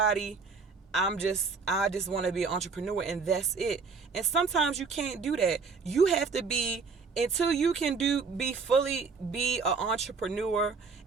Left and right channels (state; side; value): quieter; left; 4.8 dB